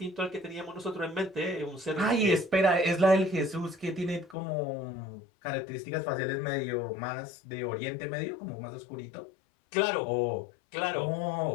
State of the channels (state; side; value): drops out; right; at 4.4 s